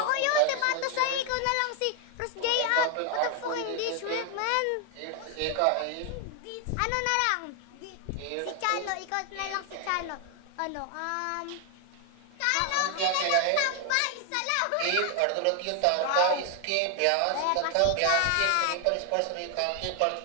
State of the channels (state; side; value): different; both; correlation 0.00